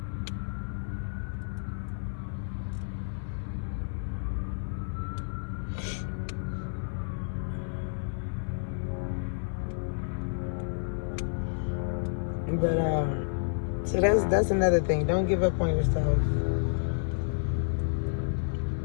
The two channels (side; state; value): right; silent; 58 dB below the other